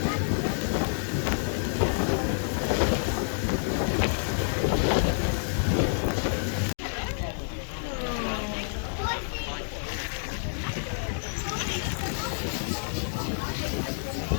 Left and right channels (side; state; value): right; silent; digital silence